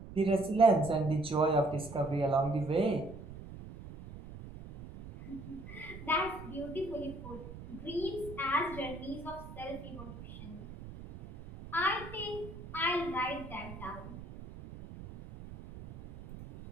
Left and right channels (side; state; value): right; noise; rumble, 13 dB below the sound